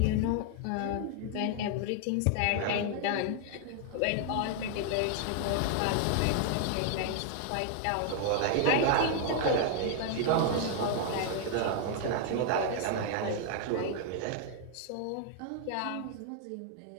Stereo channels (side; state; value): both; different; correlation 0.00